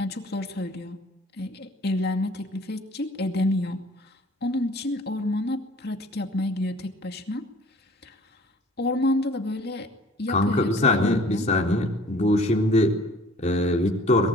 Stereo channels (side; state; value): both; normal; correlation 0.51